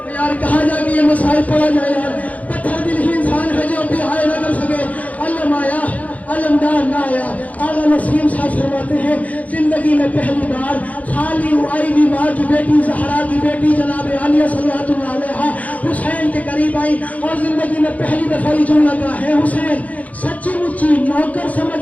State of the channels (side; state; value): right; late; 0.072 ms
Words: یار کہاں جا کے یہ مسائل پڑا جائے یار. پتھر دل ہی انسان ہے جو بھی آئے نہ کر سکے. علم آیا علمدار نہ آیا. آغا نسیم صاحب فرماتے ہیں زندگی میں پہلی بار خالی آئی بھی ماں کی بیٹی زہرا کی بیٹی جناب عالیہ صلوات اللہ علیہا حسین کے قریب آئی اور زندگی میں پہلی دفعہ یہ جملہ کہا ہے حسین سچی مچی نوکر